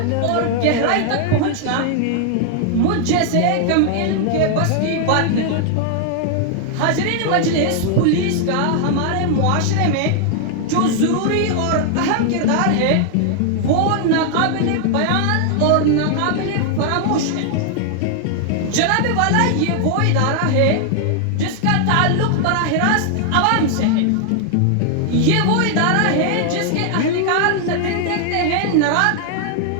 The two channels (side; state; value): both; different; correlation 0.00